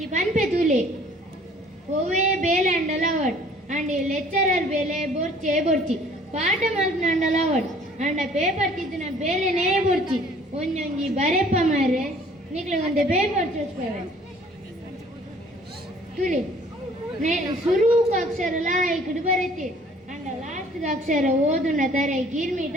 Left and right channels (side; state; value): both; normal; correlation 0.55